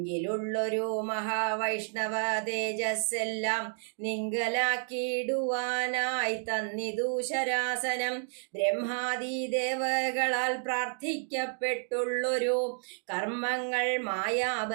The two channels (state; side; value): silent; left; 57 dB below the other